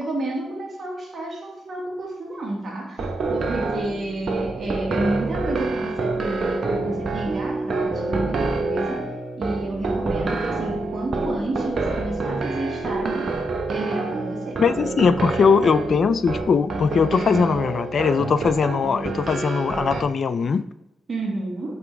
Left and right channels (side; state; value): both; normal; correlation 0.81